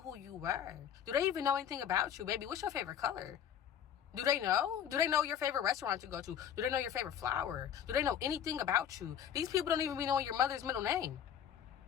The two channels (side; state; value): right; quieter; 9.2 dB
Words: you were? Do they even know anything about you? Baby, what's your favorite color? Do they know? Do they know your favorite restaurant to go to? Do they know your favorite flower? Do they know anything about you? These people don't even be knowing your mother's middle name.